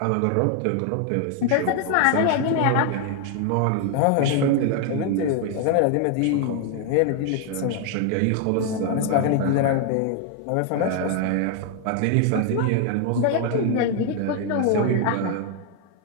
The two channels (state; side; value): different; both; correlation 0.00